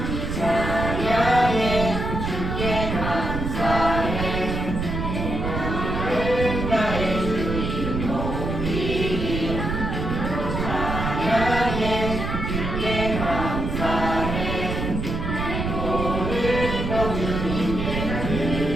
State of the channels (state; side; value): noise; right; rumble, 3 dB below the sound